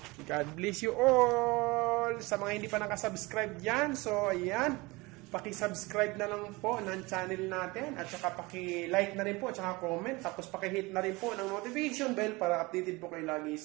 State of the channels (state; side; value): quieter; left; 23.5 dB